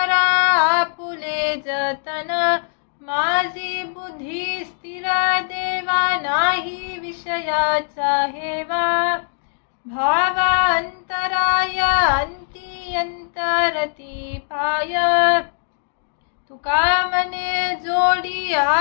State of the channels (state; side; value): silent; right; digital silence